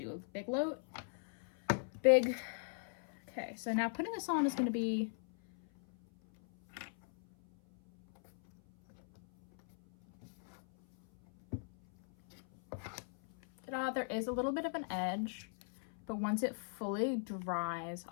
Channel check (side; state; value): right; silent; 52 dB below the other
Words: a big load. Big. Okay, so now putting this on is going to be Ta-da, there is a little bit of an edge, but once it fully dries,